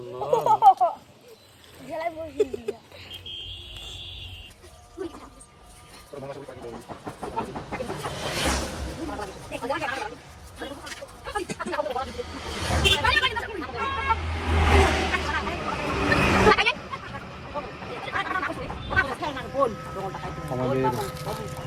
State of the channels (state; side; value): identical; both; correlation 1.00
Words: না জেলায় বসে দিয়া আমাদের